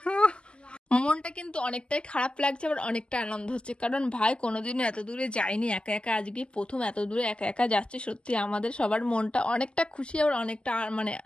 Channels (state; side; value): late; right; 0.050 ms